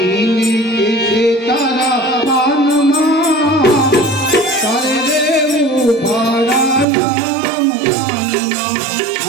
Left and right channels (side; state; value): left; drops out; at 6.9 s